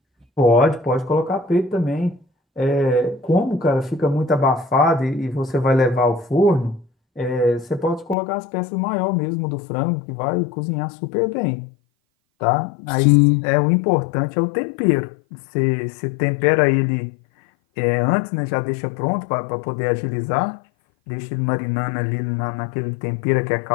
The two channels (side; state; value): right; drops out; at 8.2 s